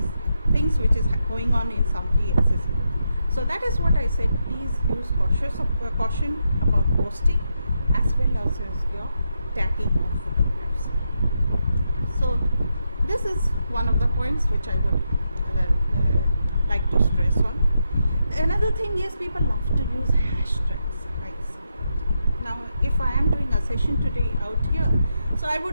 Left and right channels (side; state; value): both; inverted; correlation -0.83